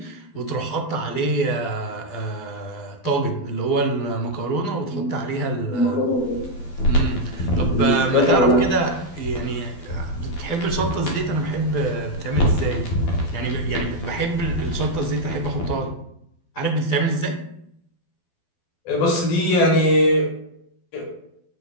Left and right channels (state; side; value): late; right; 12 ms